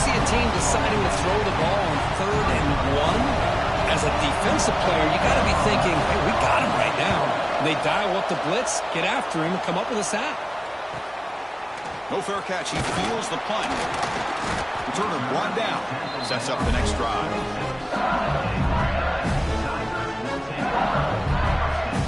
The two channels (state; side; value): identical; both; correlation 1.00